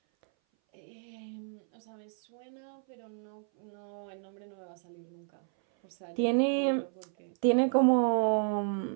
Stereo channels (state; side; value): silent; left; 57 dB below the other